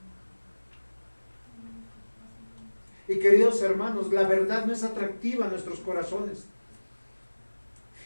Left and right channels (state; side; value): inverted; both; correlation -1.00